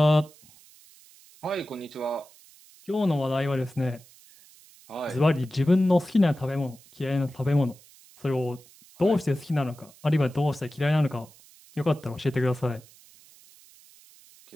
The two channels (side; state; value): right; noise; hiss, 25 dB below the sound